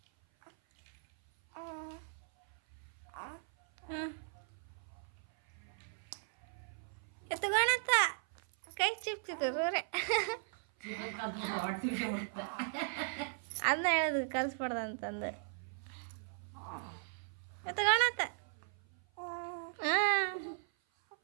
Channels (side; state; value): left; silent; 53 dB below the other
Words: ಎತ್ತುಗೋಣತ್ತ ಕೈ ಚಿಪ್ತಿದ್ರು ಅದನ್ನ ಹೇಳೋದು ಕಲಿಸ್ಬಾರ್ದು ಅಂತಂದು. ಎತ್ತುಗೋಣತ್ತ ಹಾಂ